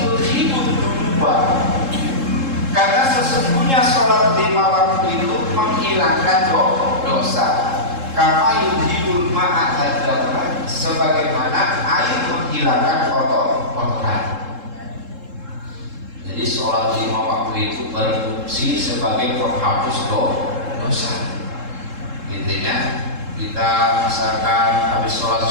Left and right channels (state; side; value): late; left; 3.7 ms